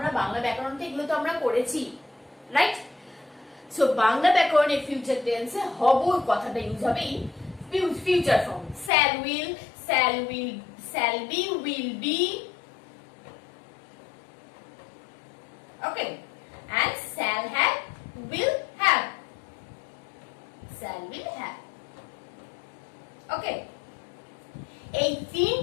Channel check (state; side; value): drops out; right; at 8.9 s